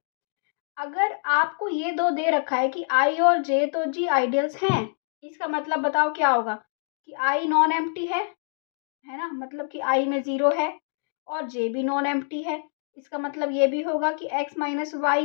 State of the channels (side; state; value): right; silent; digital silence